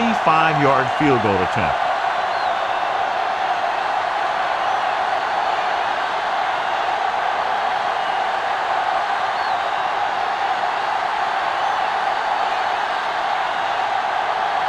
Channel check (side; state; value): both; identical; correlation 1.00